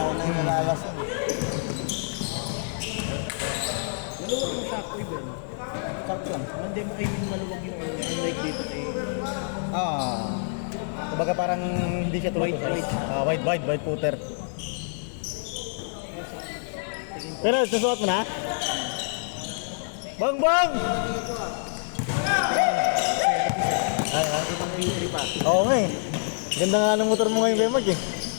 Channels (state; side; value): silent; right; digital silence